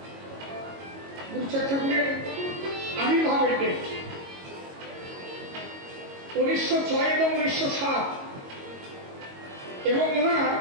গুরুচাঁদ ঠাকুরের আবির্ভাবের ডেট। 1906 এবং 1907 এবং ওনার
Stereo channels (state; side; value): late; left; 22 ms